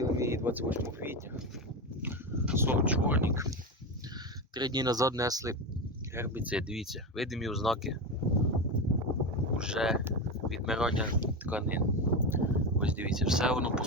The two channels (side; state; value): both; normal; correlation 0.18